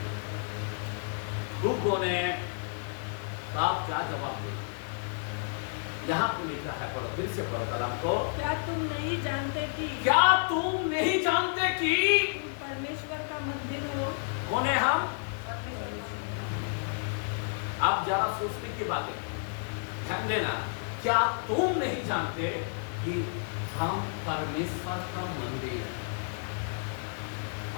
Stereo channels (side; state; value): right; silent; 57 dB below the other